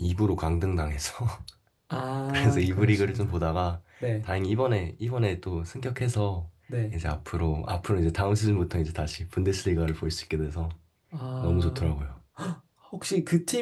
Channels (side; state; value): both; identical; correlation 1.00